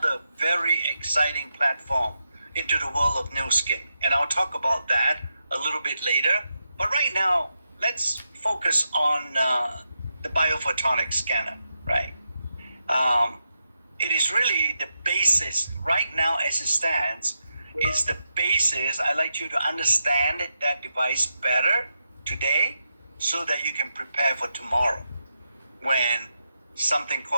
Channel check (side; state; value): both; inverted; correlation -0.86